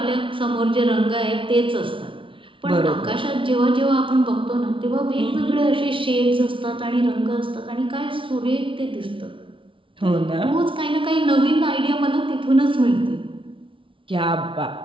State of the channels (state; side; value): late; left; 0.25 ms